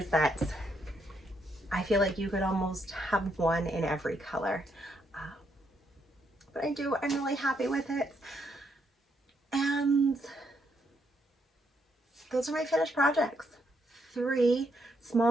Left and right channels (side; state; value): both; normal; correlation 0.76